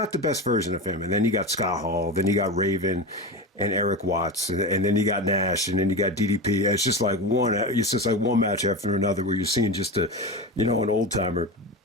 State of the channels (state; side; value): normal; both; correlation 0.23